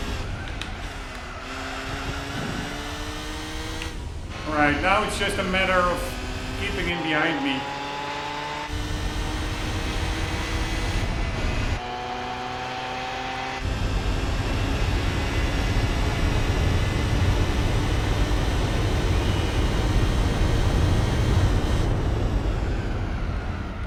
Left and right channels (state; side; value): identical; both; correlation 1.00